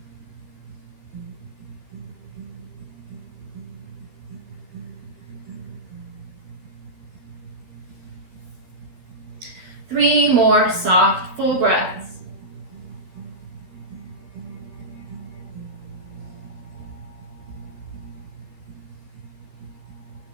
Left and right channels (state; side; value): late; left; 12 ms